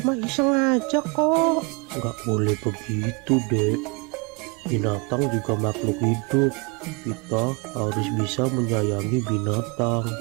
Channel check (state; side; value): quieter; left; 31.2 dB